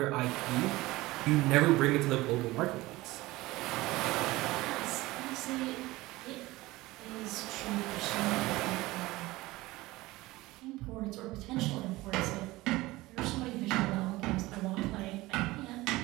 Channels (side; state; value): left; quieter; 19.5 dB